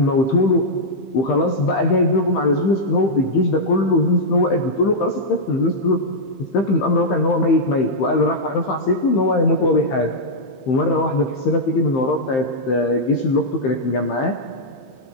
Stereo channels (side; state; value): right; late; 15 ms